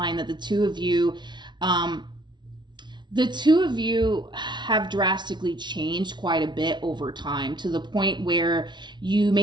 that the two of you have drastically changed quite a bit over time, to the point where you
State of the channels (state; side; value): late; left; 0.22 ms